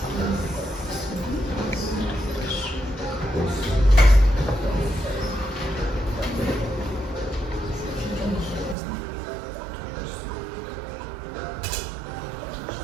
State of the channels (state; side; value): drops out; left; at 8.8 s